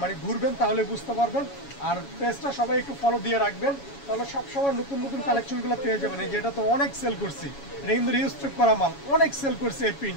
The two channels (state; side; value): late; right; 7.2 ms